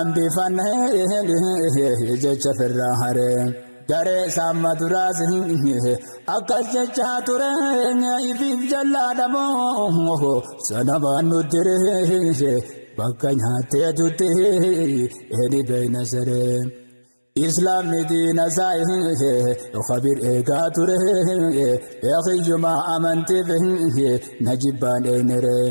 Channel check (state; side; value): inverted; both; correlation -1.00